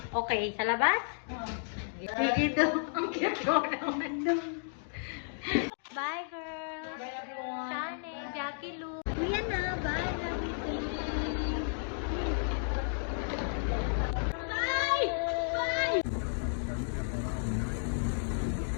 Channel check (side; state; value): right; silent; digital silence